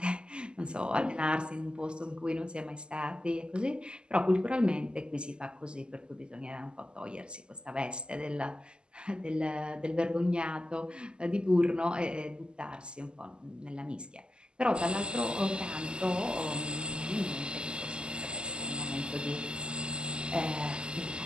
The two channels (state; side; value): late; left; 0.048 ms